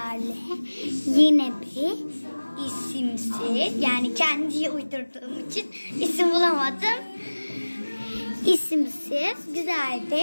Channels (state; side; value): inverted; both; correlation -1.00